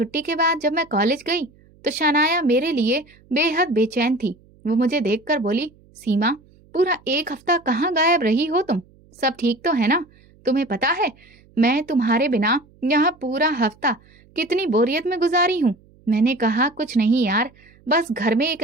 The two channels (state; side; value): noise; right; hum, 29 dB below the sound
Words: के बाद जब मैं कॉलेज गई तो शनाया मेरे लिए बेहद बेचैन थी। वो मुझे देखकर बोली, सीमा, पूरा 1 हफ्ता कहाँ गायब रही हो तुम? सब ठीक तो है ना? तुम्हें पता है मैं तुम्हारे बिना यहाँ पूरा हफ्ता कितनी बोरियत में गुजारी हूँ। मैंने कहा, कुछ नहीं यार, बस घर में एक